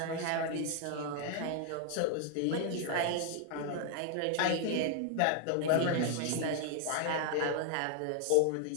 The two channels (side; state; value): both; different; correlation 0.00